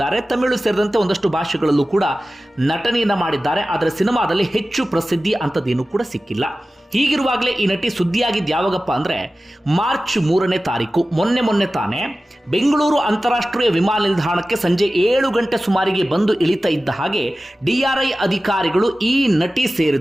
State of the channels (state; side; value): normal; both; correlation 0.95